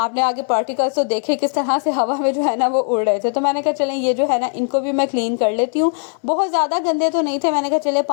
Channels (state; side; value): silent; right; 57 dB below the other